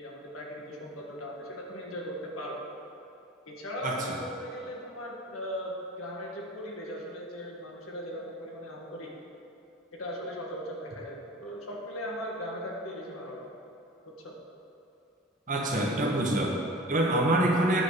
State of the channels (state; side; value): normal; both; correlation 0.40